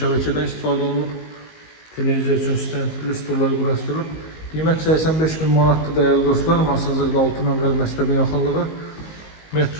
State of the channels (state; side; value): late; right; 19 ms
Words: istifadə olunub. Televiziya üçün stendli stullar quraşdırılıb. Qiymət 85.000 manatdır dəyərli dostlar. Masazırda 6 nömrəli məktəbin yaxınlığı.